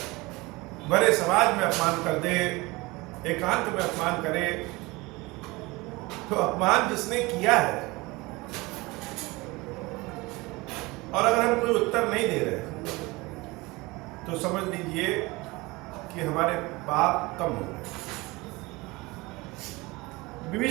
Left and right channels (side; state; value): left; quieter; 23.0 dB